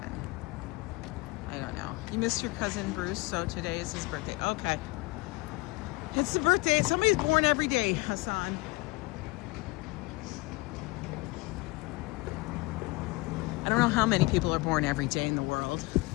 I don't know. You missed your cousin Bruce, so today is his birthday. Okay. It's the birthday. Somebody's born every day, Hassan. I don't know how many people are born every day in the world.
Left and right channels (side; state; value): right; quieter; 23.4 dB